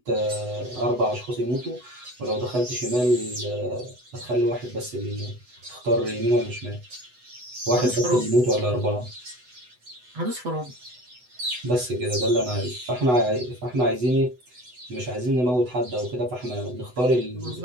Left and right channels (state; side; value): late; left; 8.0 ms